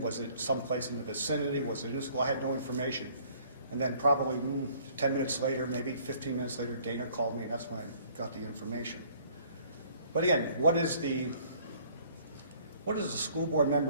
it someplace in the vicinity? Was it in the school? I had no information. And then probably 10 minutes later, maybe 15 minutes later, Dana called me, and that's when I got the information. But again, what does a school board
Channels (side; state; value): both; inverted; correlation -0.58